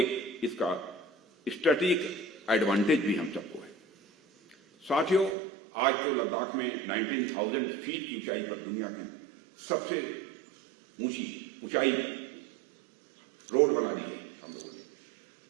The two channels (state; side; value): drops out; left; at 5.4 s